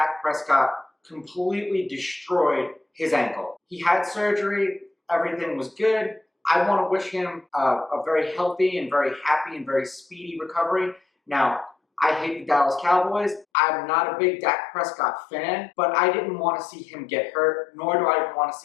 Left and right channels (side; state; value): right; drops out; at 13.5 s